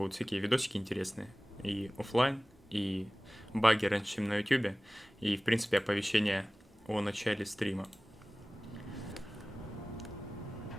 всякие видосики интересные. И оффлайн, и баги раньше, чем на ютубе. И, в принципе, оповещения о начале стрима.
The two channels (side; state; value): both; normal; correlation 0.98